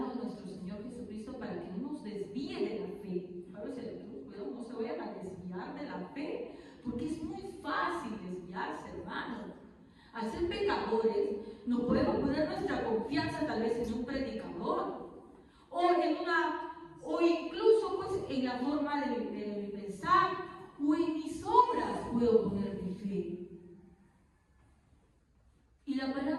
a nuestro Señor Jesucristo para que no nos desvíe de la fe. Pablo se cuidado, no se vayan a desviar de la fe, porque es muy fácil desviarse, hermano. Al ser pecadores, no podemos poner nuestra confianza tal vez en un predicador, o incluso pues en la forma de pensar, o en mis obras puedo poner mi fe. Y la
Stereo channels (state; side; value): identical; both; correlation 1.00